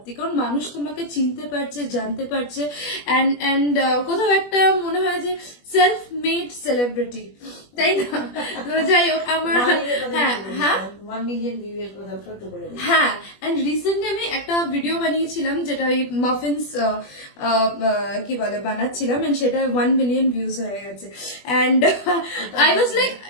কারণ মানুষ তোমাকে চিনতে পারছে, জানতে পারছে। অ্যান্ড কোথাও একটা মনে হয় যে সেলফ মেড সেলিব্রিটি, তাই না? তো যাই হোক, আমার হ্যাঁ 1 মিলিয়ন ভিউয়ের কথা একটু বলে দিই। হ্যাঁ, এন্ড রিসেন্টলি আমি একটা ভিডিও বানিয়েছিলাম যেটা ওই মাফিনস কি বলে বানাচ্ছিলাম, এন্ড সেটা 1 মিলিয়ন ভিউজ হয়ে গেছে। And I was like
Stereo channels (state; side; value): late; right; 21 ms